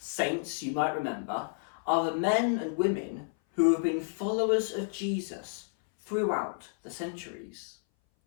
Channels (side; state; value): right; silent; 57 dB below the other